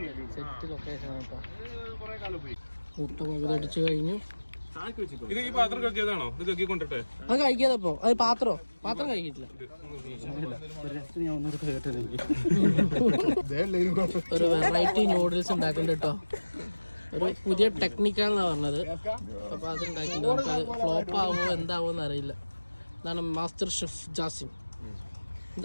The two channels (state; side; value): inverted; both; correlation -1.00